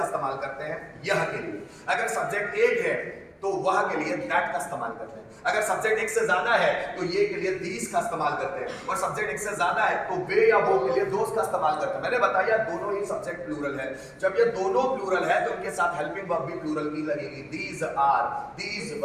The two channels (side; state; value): both; identical; correlation 1.00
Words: इस्तेमाल करते हैं यह के लिए, अगर सब्जेक्ट एक है तो वह के लिए दैट का इस्तेमाल करते हैं, अगर सब्जेक्ट एक से ज्यादा है तो ये के लिए दीज का इस्तेमाल करते हैं, और सब्जेक्ट एक से ज्यादा है तो वे या वो के लिए दोस का इस्तेमाल करते हैं। मैंने बताया दोनों ही सब्जेक्ट प्लूरल है। जब ये दोनों प्लूरल है तो उनके साथ हेल्पिंग वर्ब भी प्लूरल की लगेगी, these are, these